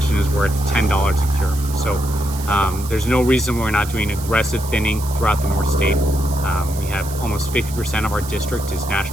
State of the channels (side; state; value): right; noise; hiss, 13 dB below the sound